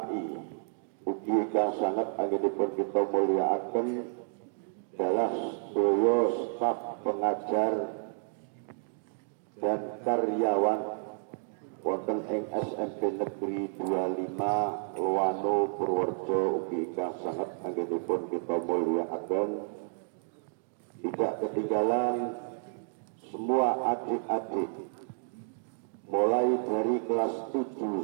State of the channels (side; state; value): left; silent; digital silence